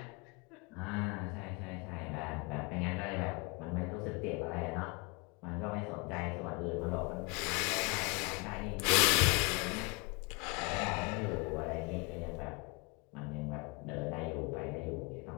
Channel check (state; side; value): quieter; right; 29.8 dB